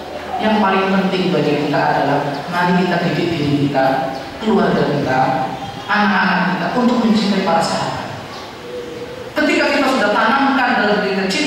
Yang paling penting bagi kita adalah mari kita didik diri kita, keluarga kita, anak-anak kita untuk mencintai para sahabat. Ketika kita sudah tanamkan dalam diri kita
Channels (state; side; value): identical; both; correlation 1.00